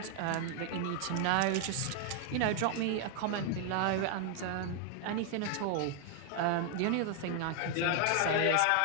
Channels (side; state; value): both; different; correlation 0.00